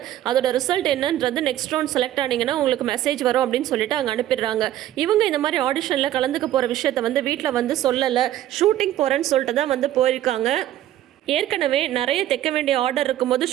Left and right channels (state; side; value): quieter; left; 13.1 dB